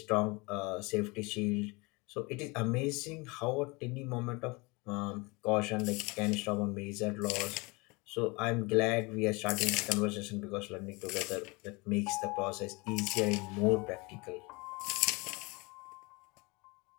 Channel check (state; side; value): quieter; right; 26.6 dB